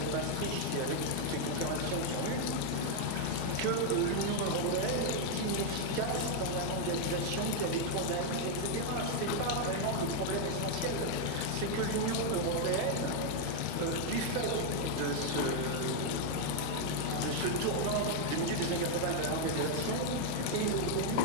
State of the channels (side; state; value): both; different; correlation 0.00